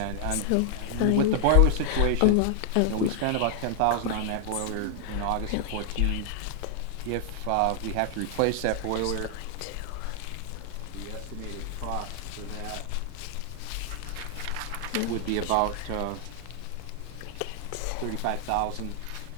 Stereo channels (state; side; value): different; both; correlation 0.00